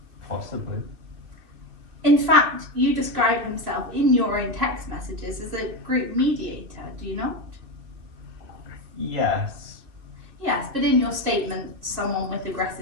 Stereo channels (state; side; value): late; left; 2.6 ms